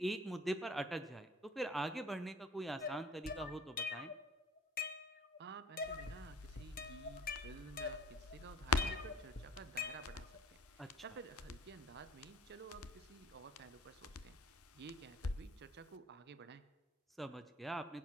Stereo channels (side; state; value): both; normal; correlation 0.48